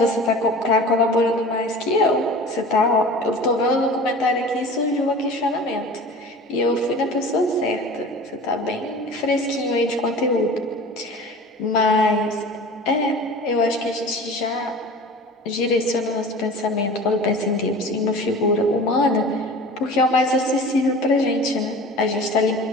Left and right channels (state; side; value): normal; both; correlation 0.39